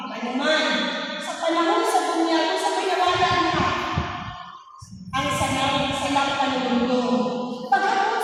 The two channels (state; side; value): identical; both; correlation 1.00